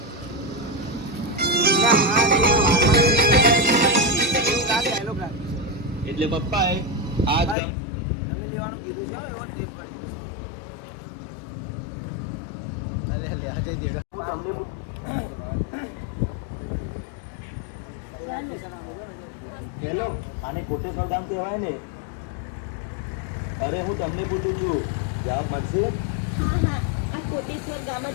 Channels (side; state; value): right; drops out; at 7.6 s